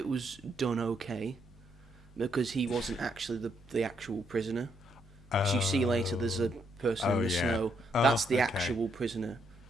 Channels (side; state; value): both; normal; correlation 0.75